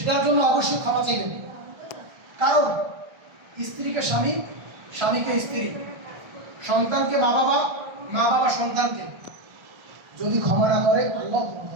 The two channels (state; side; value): late; left; 1.3 ms